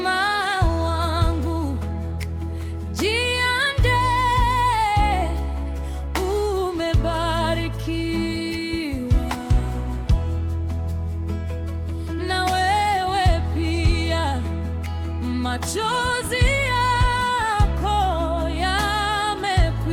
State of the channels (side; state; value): both; identical; correlation 1.00